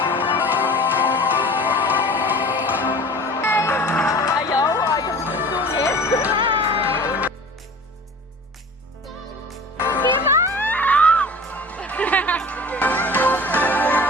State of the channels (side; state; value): both; normal; correlation 0.41